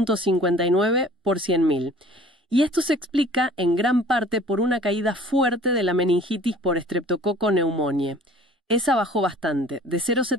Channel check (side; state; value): both; normal; correlation 0.49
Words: por 100.000. Y esto se explica en gran parte por una caída fuerte de la meningitis por Streptococcus pneumoniae. Esa bajó bastante, de